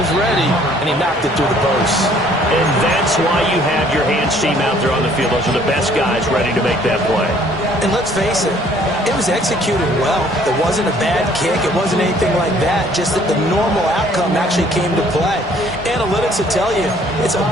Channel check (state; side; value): normal; both; correlation 0.59